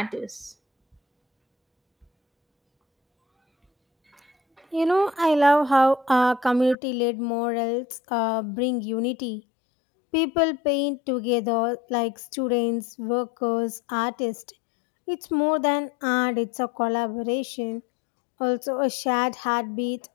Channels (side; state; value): right; drops out; at 6.8 s